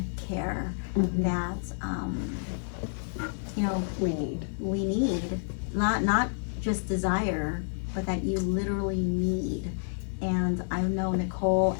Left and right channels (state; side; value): silent; right; digital silence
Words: care that, we need. Not just desire, but that you literally need. And I know Nicole